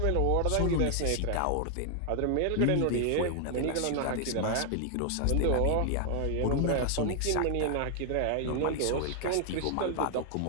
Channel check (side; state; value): both; different; correlation 0.00